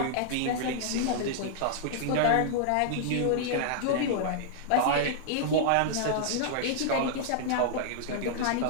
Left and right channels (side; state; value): both; different; correlation -0.01